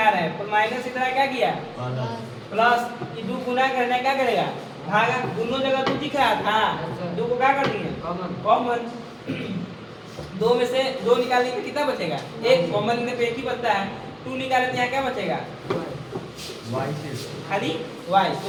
रहे हैं। पर माइनस इधर क्या किया प्लस, ये 2 गुना करना क्या करेगा भागा। दोनों जगह 2 दिख रहा था 2 को क्या कर दिए कॉमन। 2 में से 2 निकालने पे कितना बचेगा 1, कॉमन लेने पे 1 ही बचता है। 2 निकालने पे यहाँ क्या बचेगा खाली y।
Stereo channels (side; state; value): both; identical; correlation 1.00